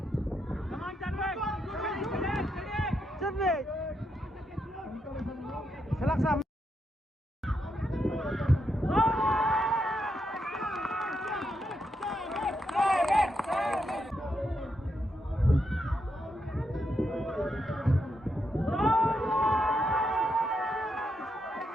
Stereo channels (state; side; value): normal; both; correlation 0.81